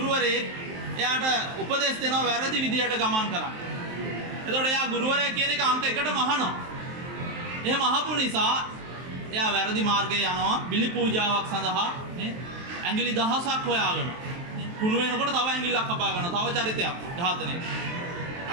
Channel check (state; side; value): late; left; 23 ms